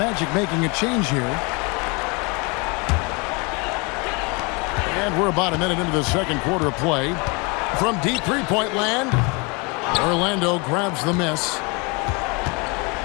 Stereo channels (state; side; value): quieter; right; 29.8 dB